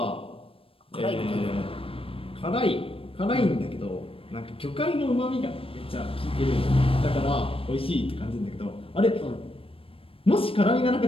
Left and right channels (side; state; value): right; late; 0.27 ms